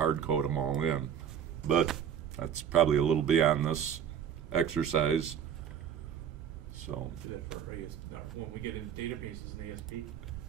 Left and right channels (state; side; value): quieter; left; 8.7 dB